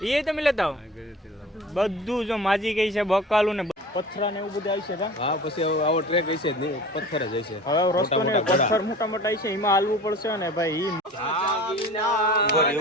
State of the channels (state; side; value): normal; both; correlation 0.40